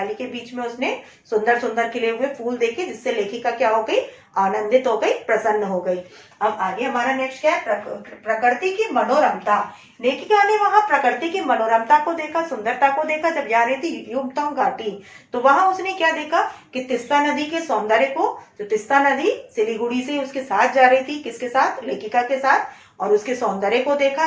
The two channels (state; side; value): identical; both; correlation 1.00